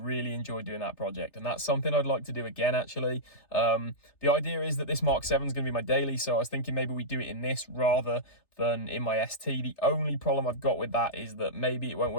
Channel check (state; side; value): late; right; 3.3 ms